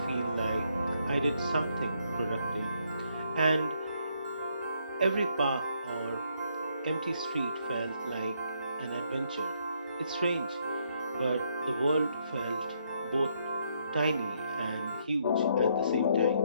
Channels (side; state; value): both; inverted; correlation -0.73